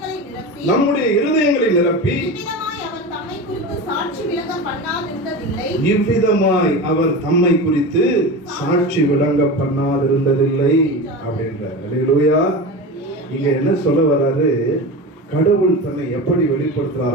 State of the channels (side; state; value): both; normal; correlation 0.27